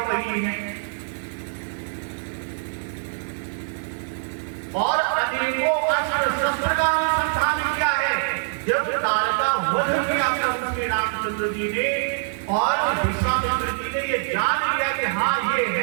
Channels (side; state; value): left; silent; digital silence